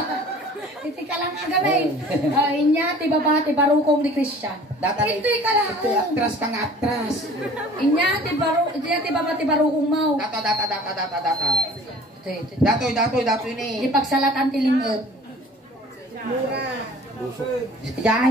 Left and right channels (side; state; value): both; normal; correlation 0.47